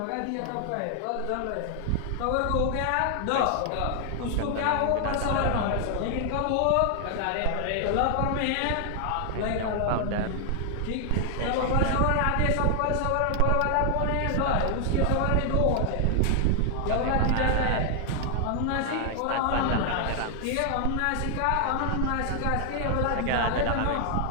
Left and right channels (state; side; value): different; both; correlation 0.00